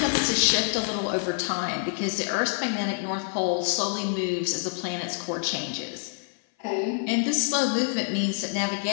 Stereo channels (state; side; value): silent; right; 55 dB below the other